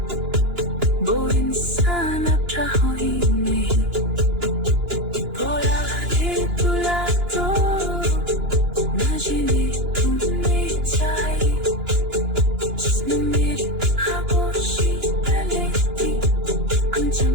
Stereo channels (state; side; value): late; left; 2.9 ms